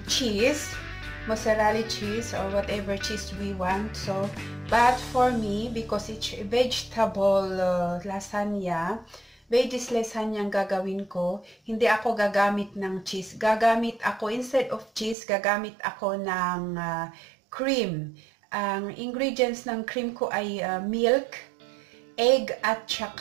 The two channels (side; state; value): left; drops out; at 15.2 s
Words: cheese. Mozzarella cheese or whatever cheese we want. So, but for me, because it's vegetable lasagna, veggies lasagna ang gagawin ko, hindi ako gagamit ng cheese. Gagamit ako, instead of cheese, gagamit ako ng cream. Ang ingredients ng cream ko ay milk, egg, at